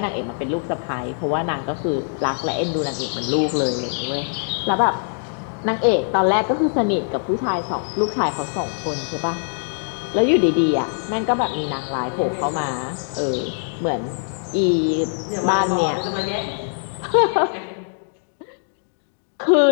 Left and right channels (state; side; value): silent; right; digital silence